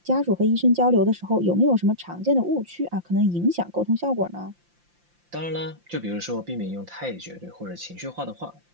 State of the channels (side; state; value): left; late; 5.8 ms